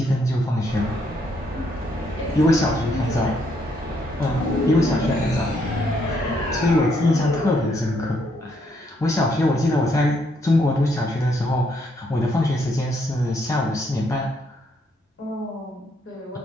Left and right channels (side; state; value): both; normal; correlation 0.73